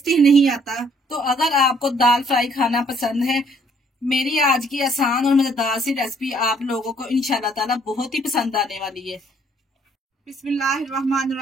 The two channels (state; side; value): normal; both; correlation 0.64